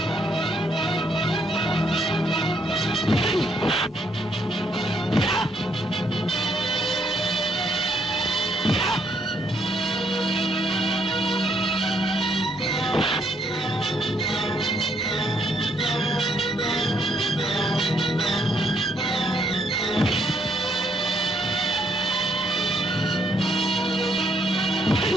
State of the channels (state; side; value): normal; both; correlation 0.71